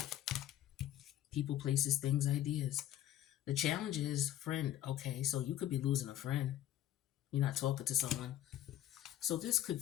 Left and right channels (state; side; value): quieter; right; 12.3 dB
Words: People, places, things, ideas. The challenge is friend. Okay, so you could be losing a friend. You're not talking to someone. So this